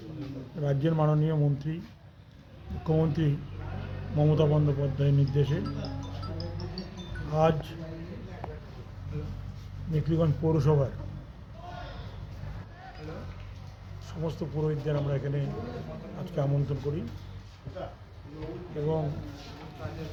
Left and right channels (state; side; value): identical; both; correlation 1.00